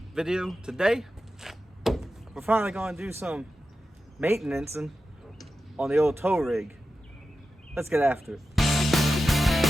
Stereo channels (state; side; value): normal; both; correlation 0.92